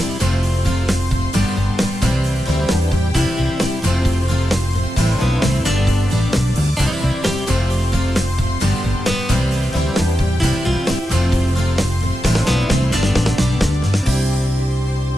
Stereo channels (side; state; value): both; normal; correlation 0.89